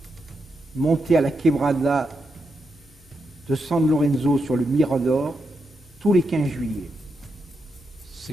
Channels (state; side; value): normal; both; correlation 0.84